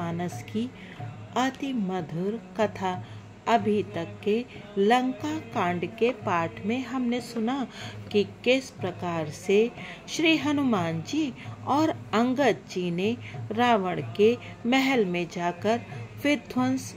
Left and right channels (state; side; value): identical; both; correlation 1.00